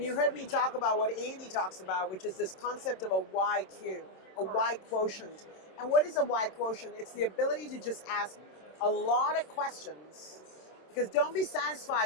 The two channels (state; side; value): late; right; 27 ms